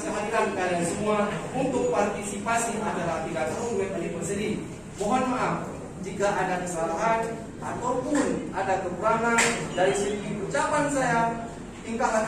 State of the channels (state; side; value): identical; both; correlation 1.00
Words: kehadiran kalian semua untuk partisipasi acara 3 tahun web anniversary. Mohon maaf jika ada kesalahan ataupun ada kekurangan dari segi ucapan saya, tingkah